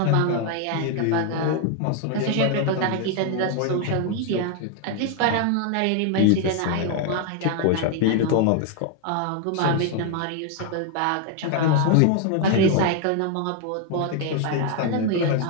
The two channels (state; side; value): different; both; correlation 0.00